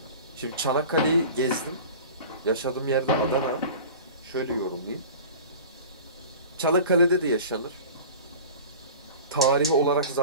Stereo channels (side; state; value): both; inverted; correlation -0.39